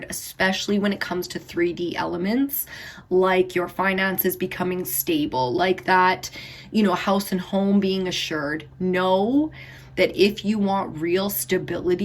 especially when it comes to 3D elements, like your finances becoming stable, like that, you know, house and home being assured. Know that if you want real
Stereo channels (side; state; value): both; identical; correlation 1.00